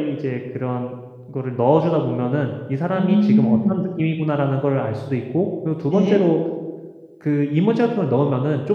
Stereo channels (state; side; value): identical; both; correlation 1.00